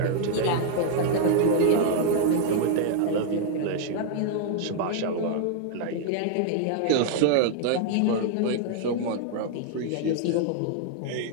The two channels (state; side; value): different; both; correlation 0.00